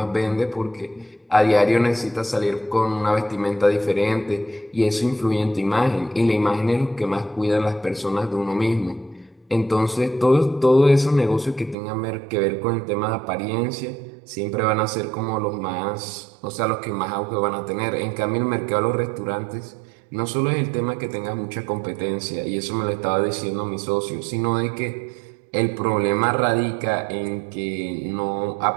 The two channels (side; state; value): left; drops out; at 11.8 s